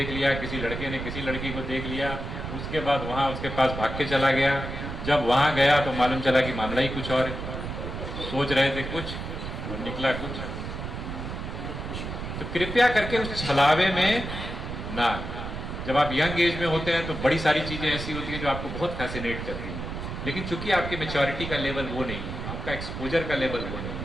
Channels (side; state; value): right; noise; rumble, 6 dB below the sound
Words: लिया, किसी लड़के ने किसी लड़की को देख लिया, उसके बाद वहां उसके पास भाग के चला गया। जब वहां गया तो मालूम चला कि मामला ही कुछ और है, सोच रहे थे कुछ और निकला कुछ। तो कृपया करके उस छलावे में ना, जब आप यंग एज में होते हैं तो बड़ी सारी चीजें ऐसी होती हैं जो आपको बहुत फैसिनेट करती हैं, लेकिन चूंकि आपकी मैच्योरिटी का लेवल वो नहीं है, आपका एक्सपोजर का लेवल वो नहीं